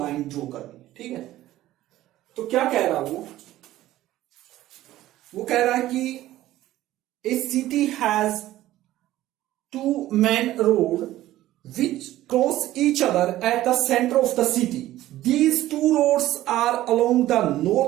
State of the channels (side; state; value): left; quieter; 14.9 dB